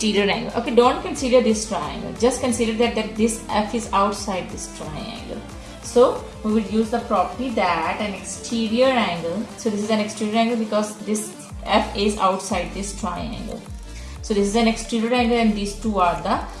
angle. Okay, don't consider this triangle. Just consider that this F is outside this triangle. So we will use the property that an exterior angle. So this is an exterior angle because this F is outside this triangle. So this is an exterior angle and these two are the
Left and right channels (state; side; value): identical; both; correlation 1.00